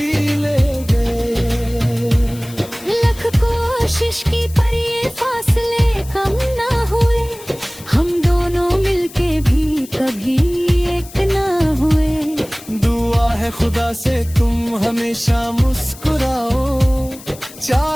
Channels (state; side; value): noise; left; hiss, 18 dB below the sound